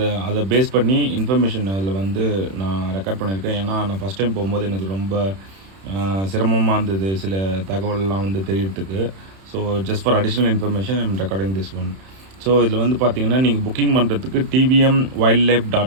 அதை பேஸ் பண்ணி இன்ஃபர்மேஷன் அதில் வந்து நான் ரெக்கார்ட் பண்ணியிருக்கேன். ஏன்னா நான் ஃபஸ்ட் டைம் போகும்போது எனக்கு ரொம்ப சிரமமாக இருந்தது சில தகவல்லாம் வந்து தெரியறதுக்கு. So just for additional information I'm recording this one. So இதில் வந்து பார்த்தீங்கன்னா, நீங்கள் புக்கிங் பண்ணுறதுக்கு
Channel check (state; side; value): late; left; 31 ms